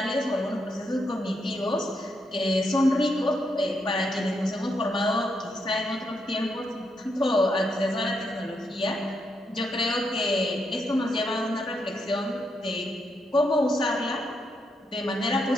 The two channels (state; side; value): normal; both; correlation 0.80